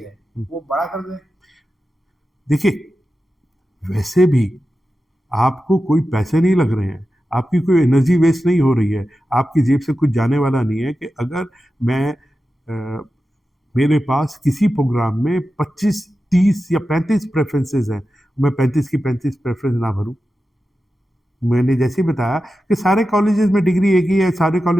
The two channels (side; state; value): both; normal; correlation 0.92